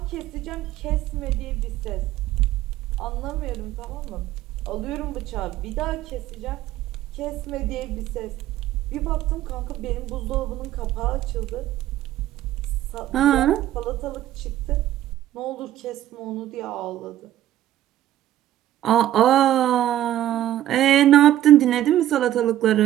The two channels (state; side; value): quieter; left; 13.0 dB